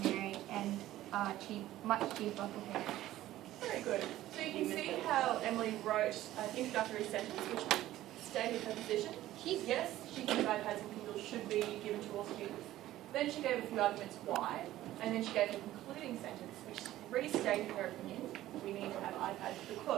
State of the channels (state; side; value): quieter; left; 14.6 dB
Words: and are much cheaper for parents. Very good. So you can see how Emily wrote an introductory sentence which stated her position. Yes, she thinks iPads and Kindles should be given to all students. Then she gave a few arguments why, and then she gave a concluding sentence which restated her opinion. We need to have iPads